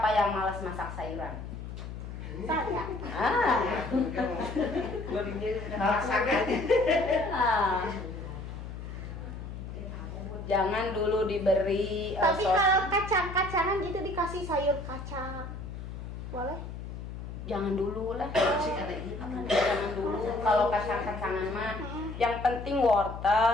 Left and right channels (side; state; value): left; noise; hum, 9 dB below the sound